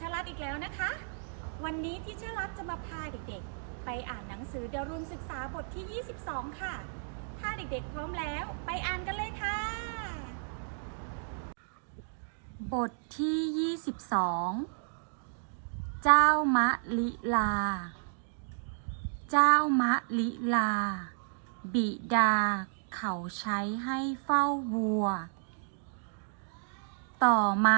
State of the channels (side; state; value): left; silent; digital silence